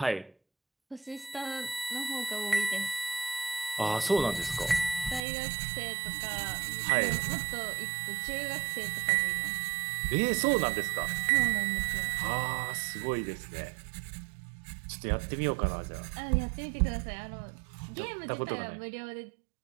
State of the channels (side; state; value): left; drops out; at 5.2 s